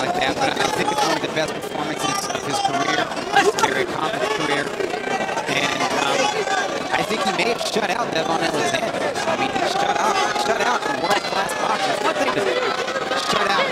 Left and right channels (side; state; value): both; identical; correlation 1.00